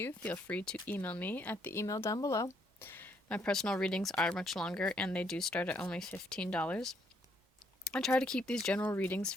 feel free to email me at the email down below. My personal readings are much longer and they do start at only $15. I try to keep these general readings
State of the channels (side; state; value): both; normal; correlation 0.70